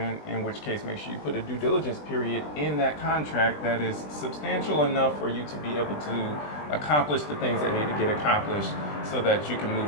which case make sure you put a due diligence period in that contract that is substantial enough for you to be able to accomplish the things that need to get accomplished so that you can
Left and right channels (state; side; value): late; right; 20 ms